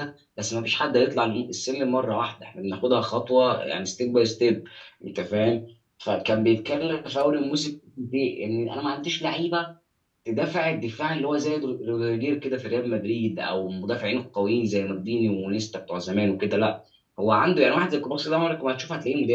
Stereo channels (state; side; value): identical; both; correlation 1.00